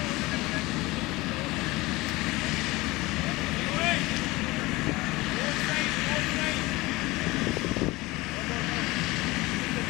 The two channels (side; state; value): right; quieter; 21.2 dB